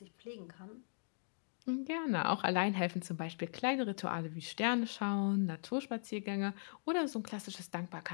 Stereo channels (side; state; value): right; silent; digital silence